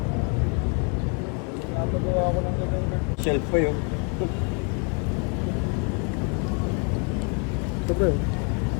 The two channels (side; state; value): right; quieter; 36.1 dB